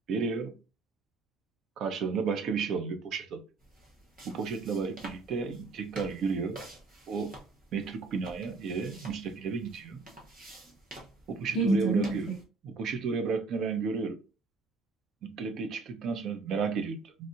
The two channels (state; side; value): quieter; left; 4.3 dB